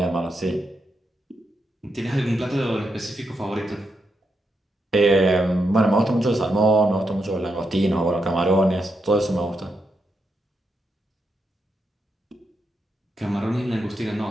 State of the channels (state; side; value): normal; both; correlation 0.83